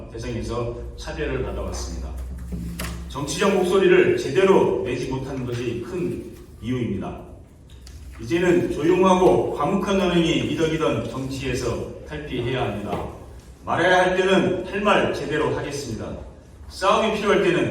대상에서 차별을 받아왔습니다. 정치적 목소리를 제대로 내지 못하는 것이 큰 이유입니다. 이제는 조용하고 과묵한 언행이 미덕이던 정치에서 탈피해야 합니다. 말해야 할 때는 할 말 제대로 하겠습니다. 싸움이 필요할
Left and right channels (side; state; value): both; identical; correlation 1.00